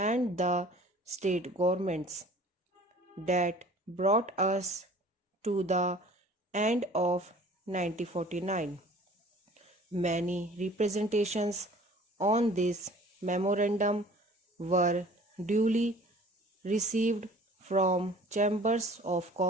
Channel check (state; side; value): normal; both; correlation 0.49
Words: the state governments. That brought us to the end of 1949. Many representations on this memorandum were duly received from chambers of